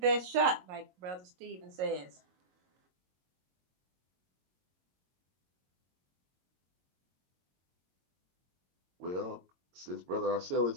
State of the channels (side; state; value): left; late; 22 ms